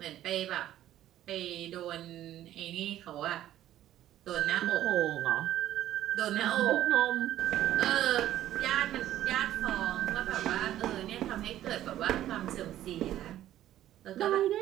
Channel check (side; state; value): left; quieter; 12.8 dB